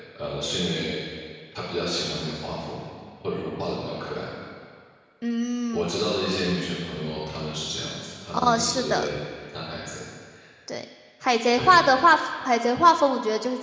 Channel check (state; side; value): identical; both; correlation 1.00